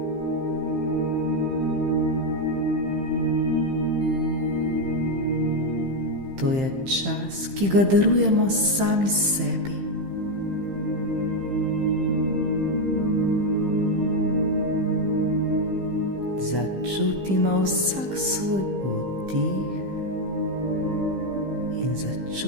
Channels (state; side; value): late; left; 15 ms